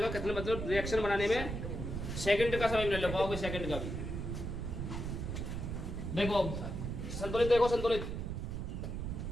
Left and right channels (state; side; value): noise; right; rumble, 4 dB below the sound